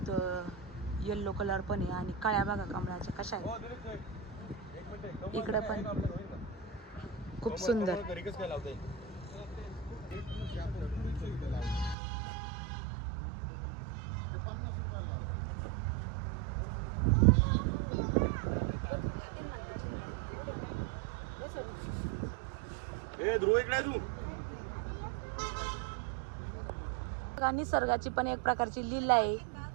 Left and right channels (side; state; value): left; drops out; at 12.0 s